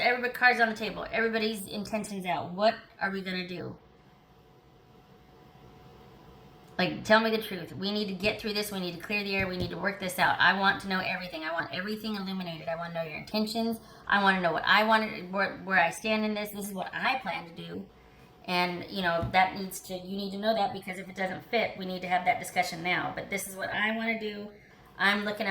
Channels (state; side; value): identical; both; correlation 1.00